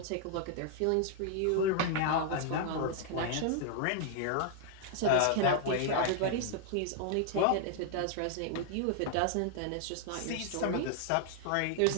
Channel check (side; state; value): both; different; correlation 0.00